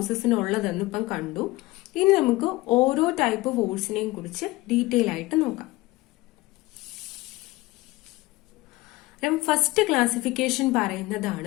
ഇപ്പം കണ്ടു. ഇനി നമുക്ക് ഓരോ ടൈപ്പ് ഫോഴ്സിനെയും കുറിച്ച് ഡീറ്റെയിൽ ആയിട്ട് നോക്കാം. ഫസ്റ്റ് ക്ലാസിഫിക്കേഷൻ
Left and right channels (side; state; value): right; quieter; 20.2 dB